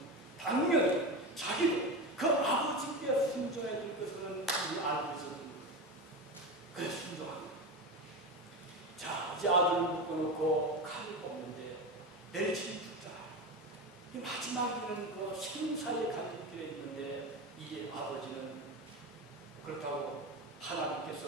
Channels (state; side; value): normal; both; correlation 0.21